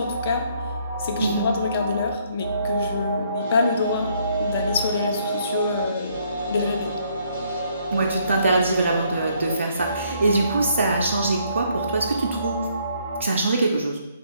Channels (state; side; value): inverted; both; correlation -0.68